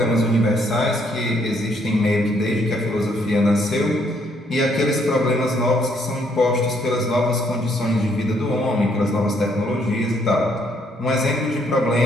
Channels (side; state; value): both; normal; correlation 0.69